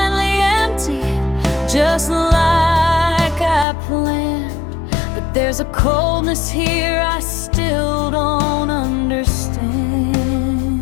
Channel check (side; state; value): right; drops out; at 3.7 s